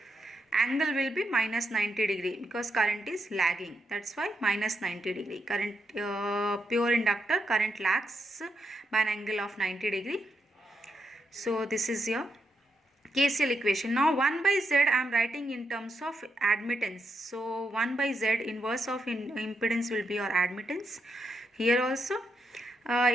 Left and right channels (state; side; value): normal; both; correlation 0.82